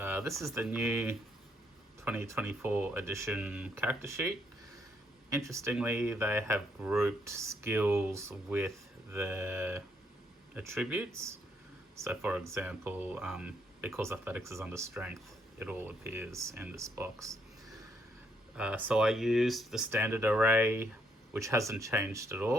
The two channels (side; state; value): both; normal; correlation 0.73